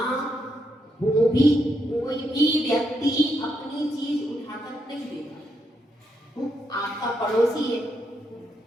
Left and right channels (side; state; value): both; normal; correlation 0.80